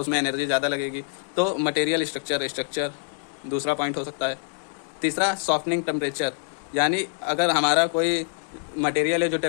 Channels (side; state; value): right; silent; 58 dB below the other